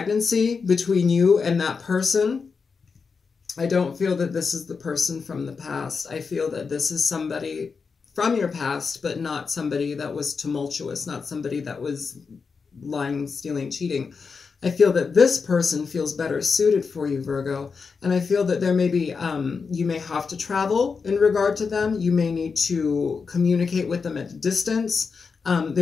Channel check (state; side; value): quieter; right; 5.2 dB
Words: between you and that person. I don't feel that this is the person from the past. I feel that this is somebody from your past, but not somebody that was tumultuous, not somebody that was lying, stealing, cheating. I feel that this person feels better suited for you, Virgo. And I feel that there may be, you may have to travel in regard to them. You may need to communicate with them at a distance.